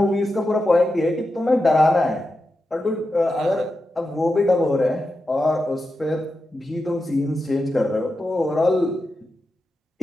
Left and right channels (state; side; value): normal; both; correlation 0.89